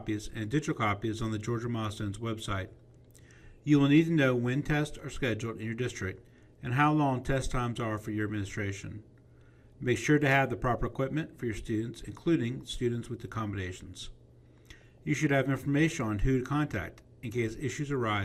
and digital copies on the Georgia Milestones website. You will need to know when tests are scheduled in your district and how long test times are for your administration. Make sure to have the proper equipment for your students, including students with accommodations. You should have information on who to contact in case issues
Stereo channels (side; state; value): both; identical; correlation 1.00